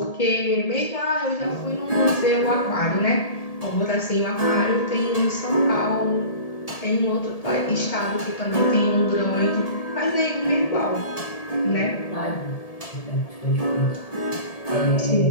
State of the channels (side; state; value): right; late; 1.7 ms